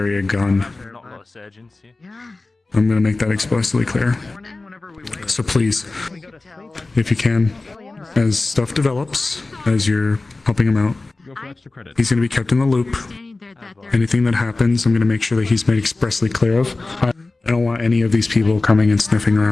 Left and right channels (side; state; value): right; quieter; 3.3 dB